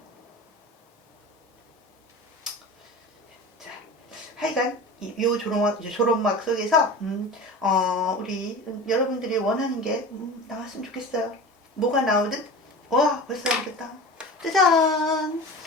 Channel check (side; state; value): both; normal; correlation 0.34